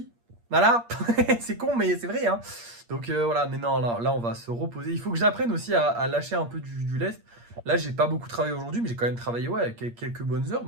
Voilà, c'est con, mais c'est vrai, hein. Donc voilà, mais non, là, on va se reposer. Il faut que j'apprenne aussi à lâcher un peu du lest. Là, j'ai pas beaucoup travaillé aujourd'hui, mais j'ai quand même travaillé ouais, quelques bonnes heures,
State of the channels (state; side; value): late; left; 8.6 ms